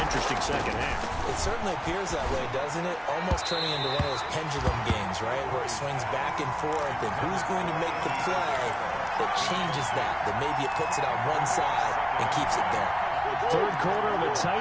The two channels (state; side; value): identical; both; correlation 1.00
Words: interesting second half. It certainly appears that way, doesn't it? Almost turning into one of those pendulum games, right, where it swings back and forth, and who's going to make the play that changes that maybe it puts it on one side and keeps it there. 3rd quarter of a